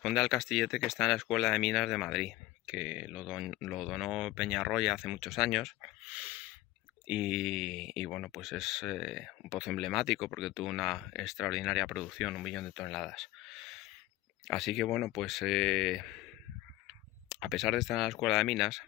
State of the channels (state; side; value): quieter; right; 17.0 dB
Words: al castillete que está en la Escuela de Minas de Madrid, que lo donó Peñarroya hace muchos años. Y bueno, pues es un pozo emblemático porque tuvo una extraordinaria producción, 1 millón de toneladas. Así que bueno, pues a pesar de estar en la Escuela de Minas,